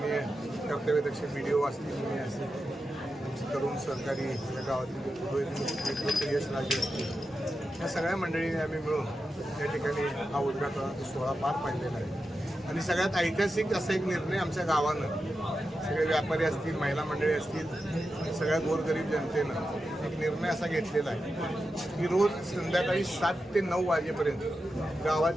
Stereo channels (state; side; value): normal; both; correlation 0.90